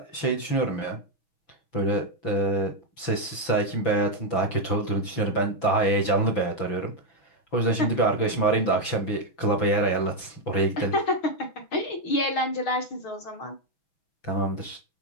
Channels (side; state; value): right; late; 6.0 ms